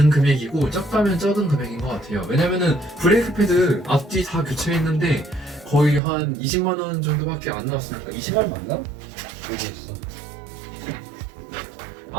금액이고 적다면 적은 금액인 것 같아요. 왜냐면은 브레이크 패드 앞뒤 다 교체했는데 거의 한 20만원 정도밖에 안 나왔으니까 20만원 맞나? 여기 있어.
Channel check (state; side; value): drops out; left; at 6.0 s